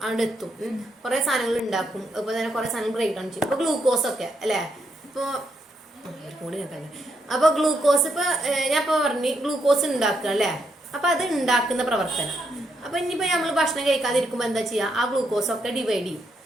അവിടെ എത്തും. കുറെ സാധനങ്ങൾ ഉണ്ടാക്കും, അതുപോലെ തന്നെ കുറെ സാധനങ്ങൾ ബ്രേക്ക് ഡൗൺ ചെയ്യും. ഇപ്പൊ ഗ്ലൂക്കോസ് ഒക്കെ അല്ലെ. ഇപ്പൊ അപ്പൊ ഗ്ലൂക്കോസ് ഇപ്പൊ ഞാൻ ഇപ്പൊ പറഞ്ഞു ഗ്ലൂക്കോസ് ഉണ്ടാക്കുക അല്ലെ. അപ്പൊ അത് ഉണ്ടാക്കുന്ന പ്രവർത്തനം. അപ്പൊ ഇനിയിപ്പോ നമ്മൾ ഭക്ഷണം കഴിക്കാതിരിക്കുമ്പോ എന്താ ചെയ്യാ, ആ ഗ്ലൂക്കോസ് ഒക്കെ ഡിവൈഡ്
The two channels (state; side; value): normal; both; correlation 0.78